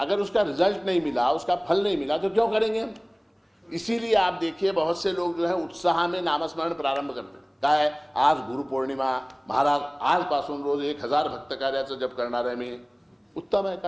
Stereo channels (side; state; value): both; identical; correlation 1.00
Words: उसका रिजल्ट नहीं मिला, उसका फल नहीं मिला, तो क्यों करेंगे हम? इसीलिए आप देखिए बहुत से लोग जो है उत्साह में नामस्मरण प्रारंभ करते हैं. काय आज गुरुपौर्णिमा, महाराज आजपासून रोज 1000 भक्त कार्याचं जप करणार आहे मी. उत्तम है,